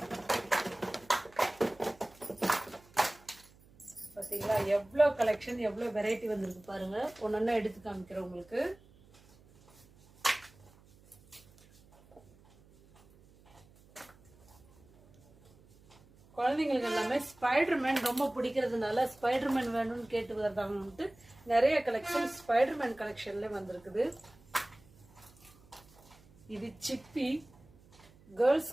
பார்த்தீங்களா எவ்வளோ கலெக்ஷன், எவ்வளோ வெரைட்டி வந்திருக்கு பாருங்க. ஒன்னொன்னா எடுத்து காமிக்கிறேன் உங்களுக்கு. குழந்தைங்களுக்கு எல்லாமே ஸ்பைடர்மேன் ரொம்ப பிடிக்கிறதுனால ஸ்பைடர்மேன் வேணும்னு கேட்டு வருதாங்கன்ட்டு நிறைய கலெக்ஷன் ஸ்பைடர்மேன் கலெக்ஷன்ல வந்திருக்குது. இது சிப்பி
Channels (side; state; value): right; noise; hum, 27 dB below the sound